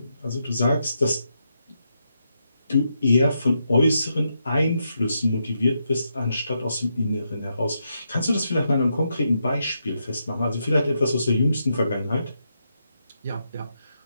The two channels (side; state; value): both; inverted; correlation -0.82